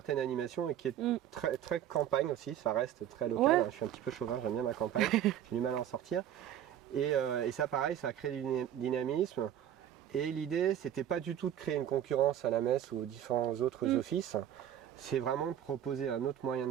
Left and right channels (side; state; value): left; quieter; 10.6 dB